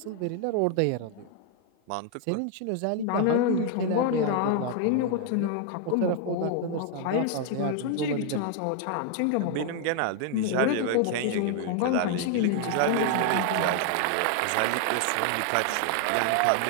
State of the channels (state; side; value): different; both; correlation 0.00